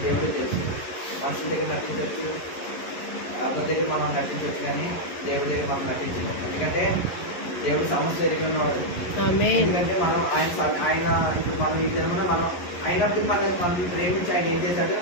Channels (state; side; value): late; right; 11 ms